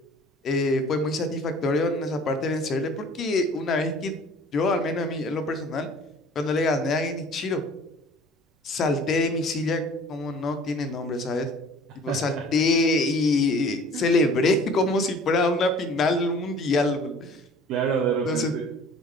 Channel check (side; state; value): both; normal; correlation 0.49